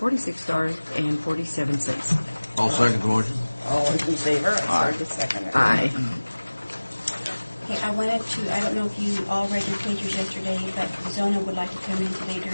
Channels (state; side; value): inverted; both; correlation -1.00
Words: I'll second the motion. All in favor? I'm sorry to second it. Aye. Okay, I don't know if you all read your papers yesterday, but Zona would like to come in today